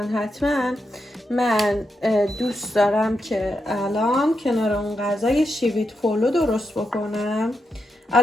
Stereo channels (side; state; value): both; normal; correlation 0.85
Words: حتما. من دوست دارم که الان کنار اون غذا یه شیویت پولو درست بکنم.